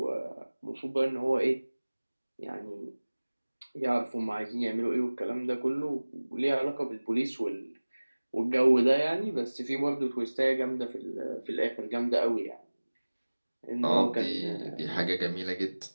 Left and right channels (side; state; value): both; inverted; correlation -1.00